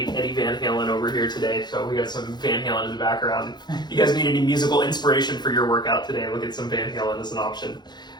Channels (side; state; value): right; late; 0.21 ms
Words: Eddie Van Halen over here today, so we got some Van Halen in the background. If you guys need any musical inspiration for your workout today, look at some Van Halen as an option.